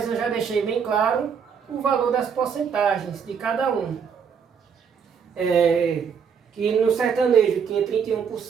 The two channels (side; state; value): left; quieter; 6.7 dB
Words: eu já deixei bem claro o valor das porcentagens de cada um. Que no sertanejo tinha